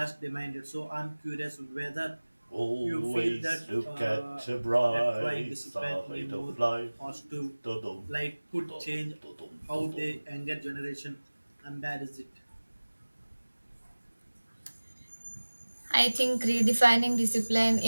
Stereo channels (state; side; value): inverted; both; correlation -1.00